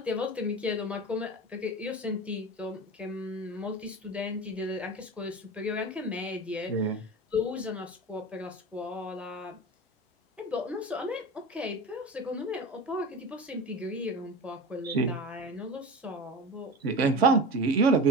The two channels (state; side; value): normal; both; correlation 0.30